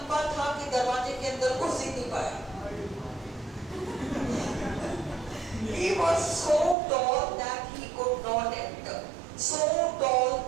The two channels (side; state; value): left; drops out; at 6.8 s